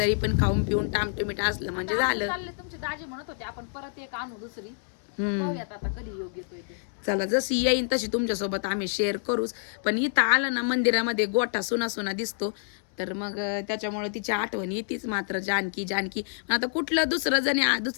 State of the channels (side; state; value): right; silent; 60 dB below the other